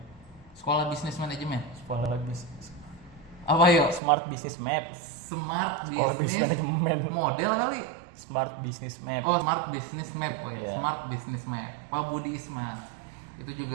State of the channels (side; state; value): left; drops out; at 4.0 s